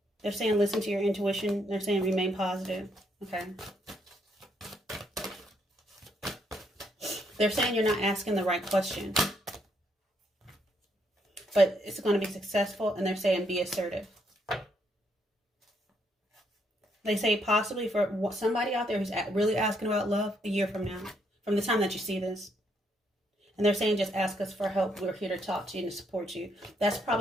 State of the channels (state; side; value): normal; both; correlation 0.73